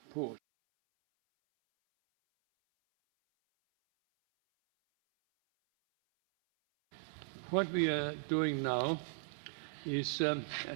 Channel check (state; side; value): silent; left; 53 dB below the other